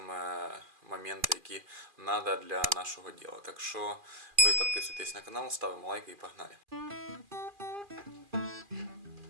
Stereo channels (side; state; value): left; late; 2.4 ms